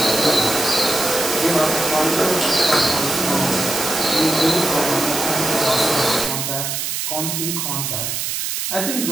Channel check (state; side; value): noise; right; hiss, 2 dB below the sound